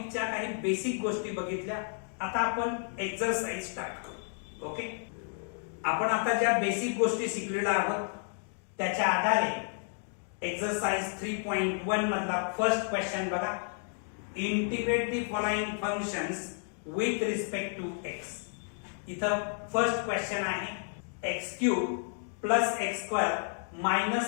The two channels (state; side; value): silent; right; 57 dB below the other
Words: काही बेसिक गोष्टी बघितल्या. आता आपण एक्सरसाइज स्टार्ट करू. ओके, आपण आता ज्या बेसिक गोष्टी शिकलेल्या आहोत त्याच्या आधारे एक्सरसाइज 3.1 मधला फर्स्ट क्वेश्चन बघा. Integrate the following functions with respect to x. इथं फर्स्ट क्वेश्चन आहे x cube plus x square